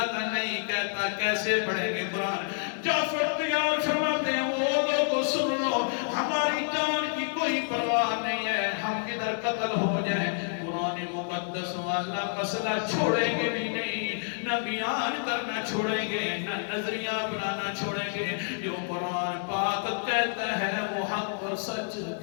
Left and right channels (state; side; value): silent; right; 59 dB below the other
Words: کا نہیں کہتا، کیسے پڑھیں گے قرآن؟ جعفر تیار فرماتے ہیں وہ لوگوں سن لو، ہماری جان کی کوئی پرواہ نہیں ہے، ہم کدھر قتل ہو جائیں قرآن مقدس والا مسئلہ چھوڑیں گے بھی نہیں، نہ بیان کرنا چھوڑیں گے، نہ نظریہ بنانا چھوڑیں گے. جو قرآن پاک کہتا ہے وہ حق اور سچ